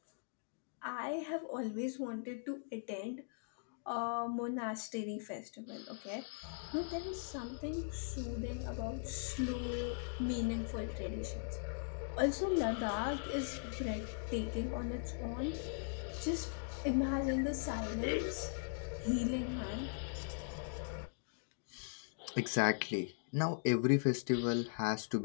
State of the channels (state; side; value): silent; right; digital silence